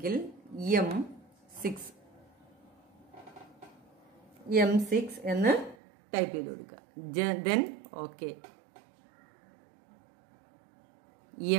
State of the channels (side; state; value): left; drops out; at 5.8 s